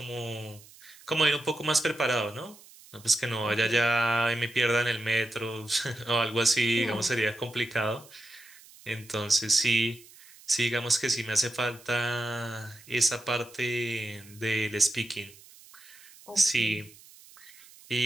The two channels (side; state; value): right; noise; hiss, 22 dB below the sound